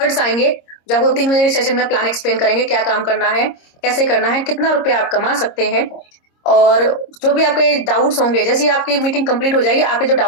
आएंगे, जो आपको 3 बजे के सेशन में प्लान एक्सप्लेन करेंगे, क्या काम करना है, कैसे करना है, कितना रुपया आप कमा सकते हैं, और जो भी आपके डाउट्स होंगे, जैसे ही आपकी मीटिंग कंप्लीट हो जाएगी, आपके जो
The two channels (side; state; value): right; late; 26 ms